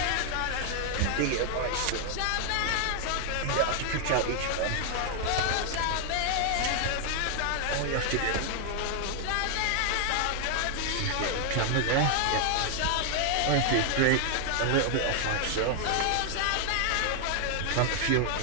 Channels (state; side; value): different; both; correlation 0.00